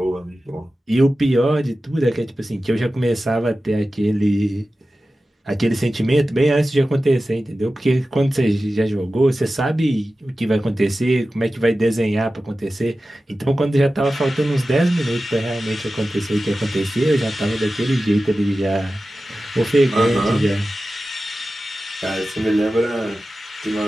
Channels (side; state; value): both; normal; correlation 0.94